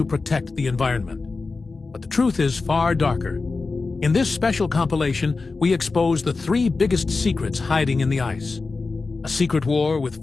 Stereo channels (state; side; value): quieter; right; 4.0 dB